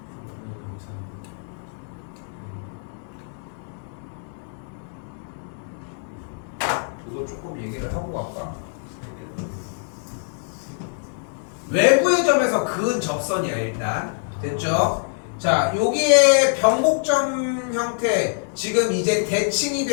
이거 조금 얘기를 하고 갈까? 외부의 점에서 그은 접선이야 일단. 됐죠? 자, 여기에 변곡점 형태, 지금 이제 대칭이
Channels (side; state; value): right; silent; digital silence